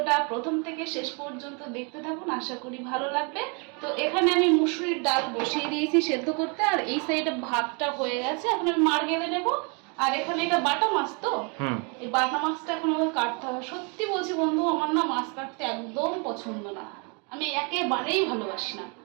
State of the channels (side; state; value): left; quieter; 34.1 dB